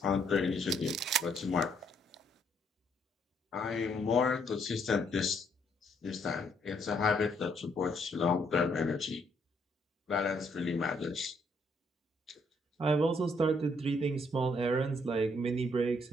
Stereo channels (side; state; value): both; normal; correlation 0.70